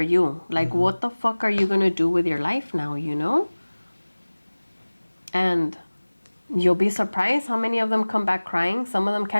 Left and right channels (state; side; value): inverted; both; correlation -1.00